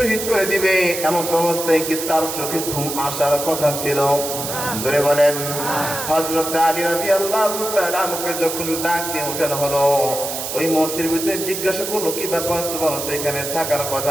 করে দিবে। এমন অবস্থায় কি তার চোখে ঘুম আসার কথা ছিল? জোরে বলেন। হযরত আলী রাদিয়াল্লাহু তাআলা আনহুকে যখন ডাক দিয়ে উঠানো হলো, ওই মুহূর্তের ভিতরে জিজ্ঞাসা করলো, কি ব্যাপার, তোমার তো এখানে থাকার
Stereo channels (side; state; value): right; noise; hiss, 5 dB below the sound